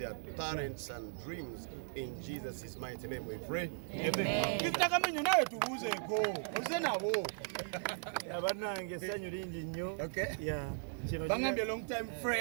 talents and dreams. In Jesus' mighty name we pray. Amen. Kitakamanyo nawe tubuuzeeko oze nabo. Abanange sanyu lingi nnyo. Bangambye long time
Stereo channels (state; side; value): silent; left; digital silence